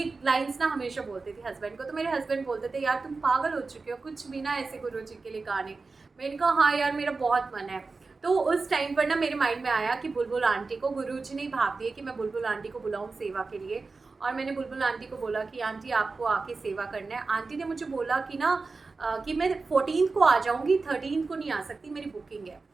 लाइंस ना हमेशा बोलती थी हस्बैंड को। तो मेरे हस्बैंड बोलते थे यार तुम पागल हो चुके हो, कुछ भी ना ऐसे गुरुजी के लिए गाने। मैंने कहा हाँ यार मेरा बहुत मन है। तो उस टाइम पर ना मेरे माइंड में आया कि बुलबुल आंटी को गुरुजी ने भाप दिए कि मैं बुलबुल आंटी को बुलाऊं सेवा के लिए। और मैंने बुलबुल आंटी को बोला कि आंटी आपको आके सेवा करना है। आंटी ने मुझे बोला कि ना कि मैं 14 को आ जाऊंगी, 13 को नहीं आ सकती, मेरी बुकिंग है।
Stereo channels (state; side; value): quieter; left; 4.0 dB